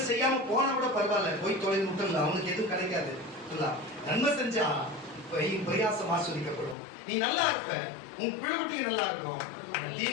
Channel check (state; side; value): drops out; right; at 6.8 s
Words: செய்யாம போனா கூட பரவாயில்ல, போய் தொழில் முட்டல, அவனுக்கு எதுவும் கிடைக்காது. நன்மை செஞ்சா பிரயாசம் ஆஸ்வதிக்கப்படும். நீ நல்லா இருப்ப, உன் பிள்ளைகளுக்கு நல்லா இருக்கும்.